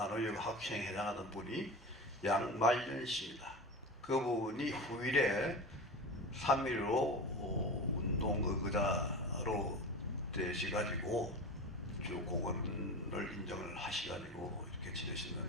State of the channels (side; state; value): both; normal; correlation 0.29